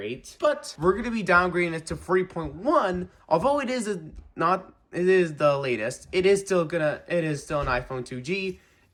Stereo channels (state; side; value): identical; both; correlation 1.00